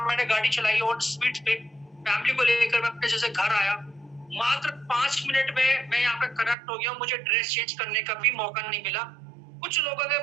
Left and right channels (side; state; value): left; drops out; at 6.6 s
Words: मैंने गाड़ी चलाई ऑन स्पीड पे, फैमिली को लेकर मैं अपने जैसे घर आया। मात्र 5 मिनट में मैं यहाँ पे कनेक्ट हो गया। मुझे ड्रेस चेंज करने का भी मौका नहीं मिला। कुछ लोगों के